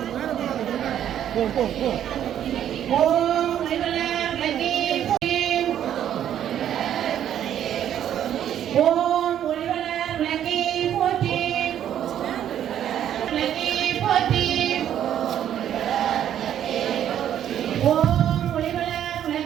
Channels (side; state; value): left; quieter; 10.4 dB